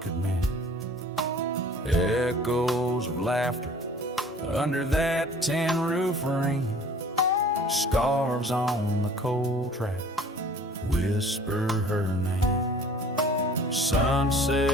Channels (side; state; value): both; normal; correlation 0.49